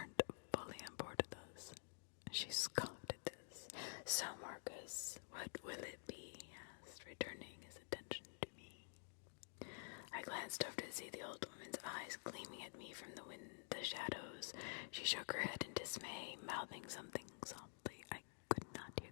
fully on board with us. She scoffed at this. So, Marcus, what will it be? He asked, returning his attention to me. I glanced over to see the old woman's eyes gleaming at me from the shadows. She shook her head in dismay, mouthing something softly. I could not hear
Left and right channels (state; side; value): silent; right; digital silence